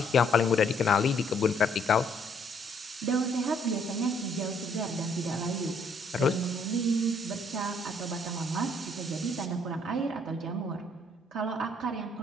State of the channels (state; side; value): normal; both; correlation 0.66